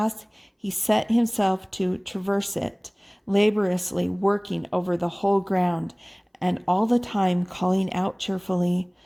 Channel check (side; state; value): both; identical; correlation 1.00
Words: he set himself to traverse it, laboriously working over the whole ground, and all the time calling out cheerfully,